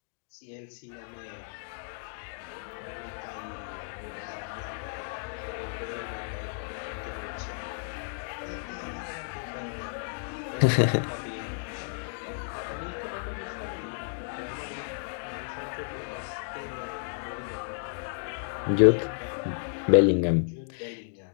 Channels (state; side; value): silent; right; digital silence